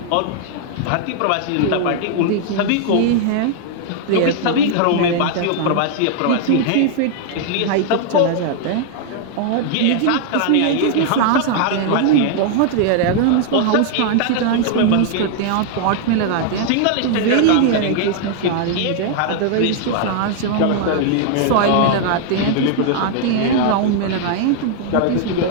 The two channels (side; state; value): both; different; correlation 0.00